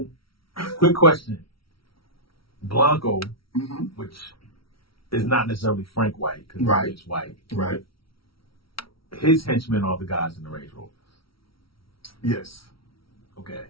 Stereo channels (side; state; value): right; late; 0.75 ms